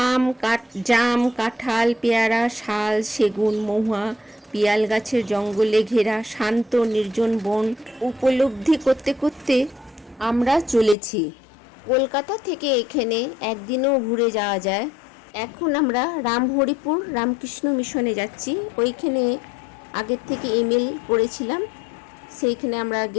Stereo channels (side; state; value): right; drops out; at 11.0 s